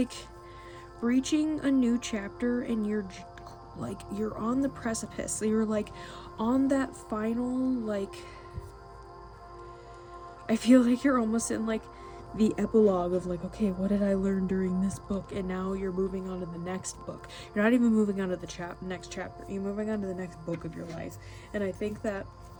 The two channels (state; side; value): identical; both; correlation 1.00